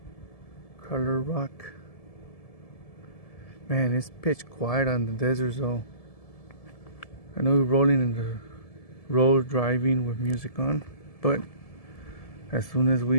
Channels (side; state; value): right; late; 1.7 ms